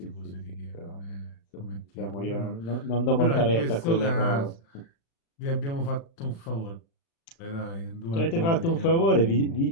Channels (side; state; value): right; late; 36 ms